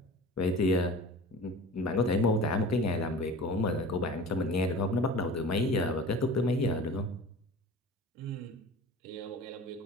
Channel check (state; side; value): normal; both; correlation 0.39